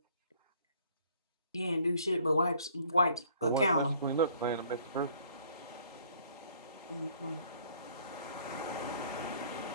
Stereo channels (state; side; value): inverted; both; correlation -0.58